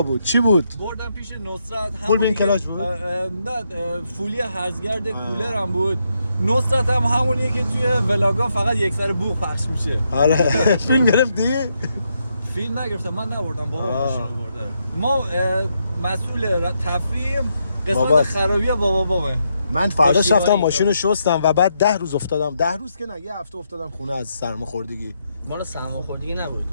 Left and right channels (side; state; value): both; inverted; correlation -0.79